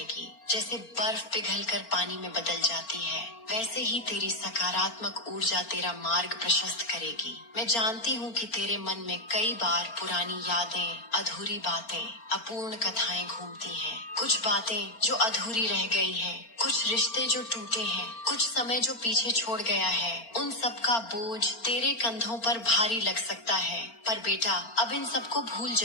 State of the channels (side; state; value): right; late; 4.4 ms